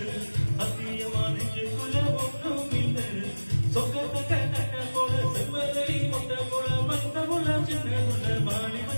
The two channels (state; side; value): inverted; both; correlation -1.00